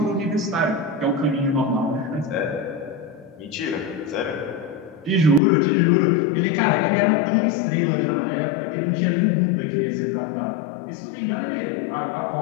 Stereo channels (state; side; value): drops out; right; at 5.4 s